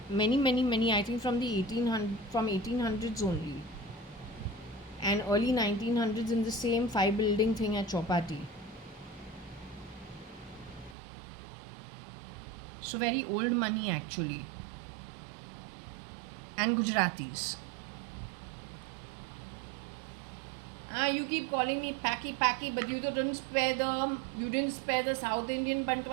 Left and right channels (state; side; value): drops out; left; at 11.0 s